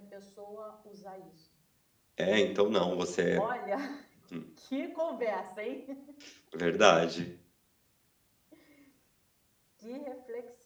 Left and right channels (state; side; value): identical; both; correlation 1.00